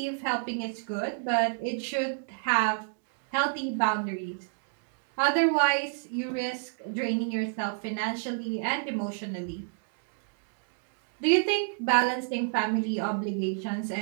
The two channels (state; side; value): silent; left; digital silence